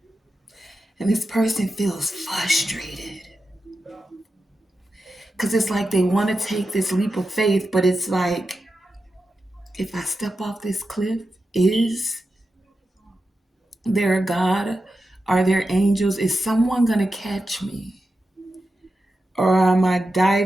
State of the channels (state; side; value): normal; both; correlation 0.90